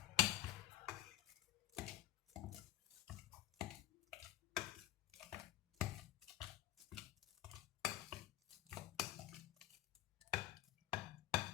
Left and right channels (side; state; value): right; quieter; 14.0 dB